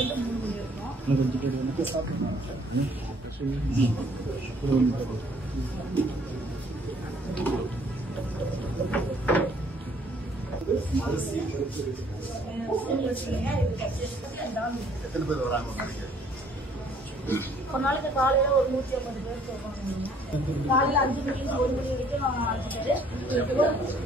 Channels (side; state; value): both; normal; correlation 0.61